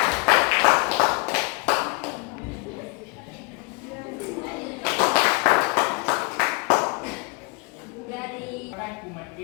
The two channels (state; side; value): quieter; right; 29.4 dB